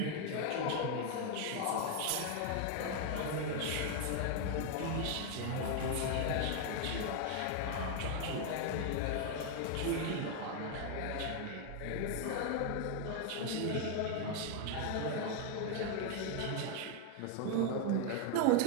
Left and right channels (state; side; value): different; both; correlation 0.00